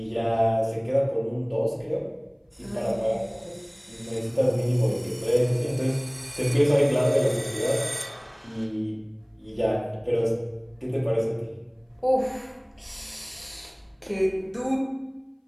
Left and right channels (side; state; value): both; identical; correlation 1.00